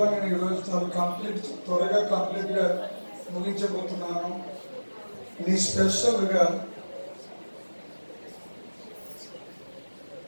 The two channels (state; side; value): inverted; both; correlation -1.00